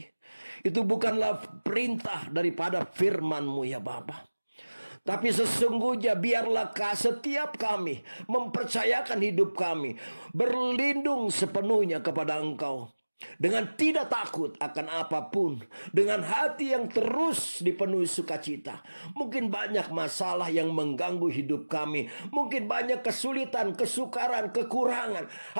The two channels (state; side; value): inverted; both; correlation -1.00